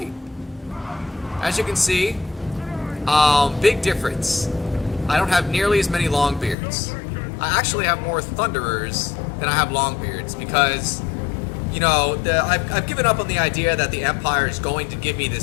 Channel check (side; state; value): right; drops out; at 6.6 s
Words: As you can see, big difference. I don't have nearly as many Longbeards. I actually have more Thunderers than I have Longbeards because, you know, I've given up on the idea that the Empire is going to give me